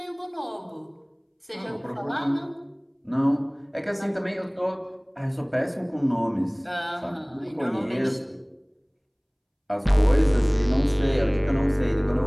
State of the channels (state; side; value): identical; both; correlation 1.00